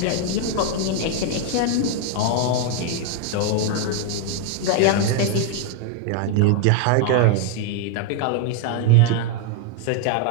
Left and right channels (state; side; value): different; both; correlation 0.00